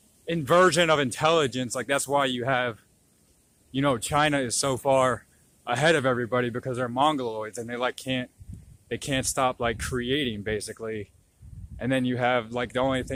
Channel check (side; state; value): both; identical; correlation 1.00